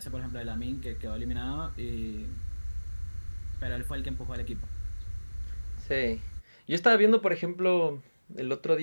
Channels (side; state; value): both; inverted; correlation -1.00